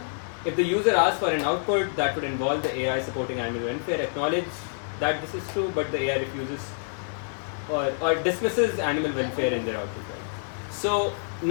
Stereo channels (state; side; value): silent; right; 60 dB below the other